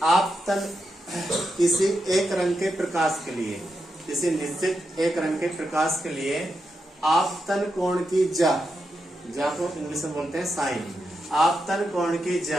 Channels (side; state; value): both; normal; correlation 0.86